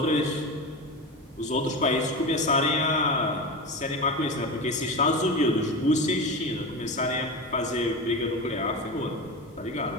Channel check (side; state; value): both; normal; correlation 0.24